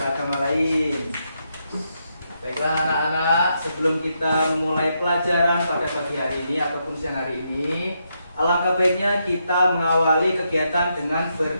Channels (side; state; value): both; inverted; correlation -0.81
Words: lain. Baiklah anak-anak, sebelum kita memulai pelajaran pada pagi hari ini ataupun siang hari ini, alangkah baiknya kita mengawali kegiatan dengan